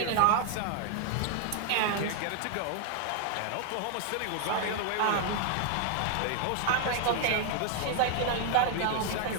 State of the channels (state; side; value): different; both; correlation 0.00